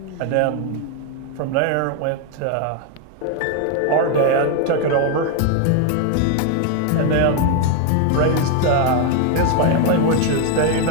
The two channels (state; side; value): different; both; correlation 0.01